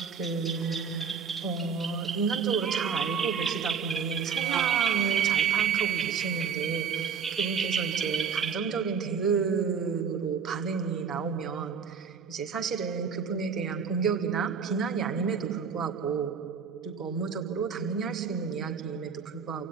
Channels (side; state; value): left; quieter; 6.4 dB